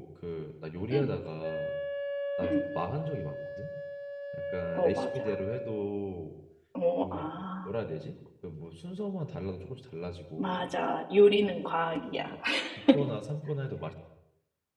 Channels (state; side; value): identical; both; correlation 1.00